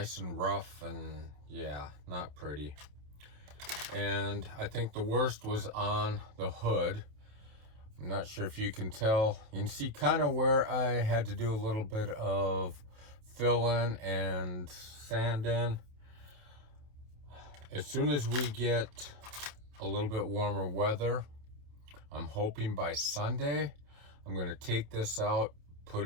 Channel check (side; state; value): left; late; 28 ms